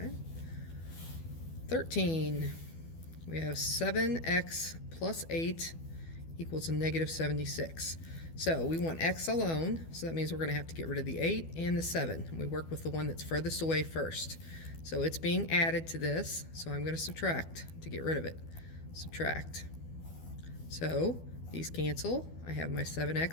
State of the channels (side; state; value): right; late; 12 ms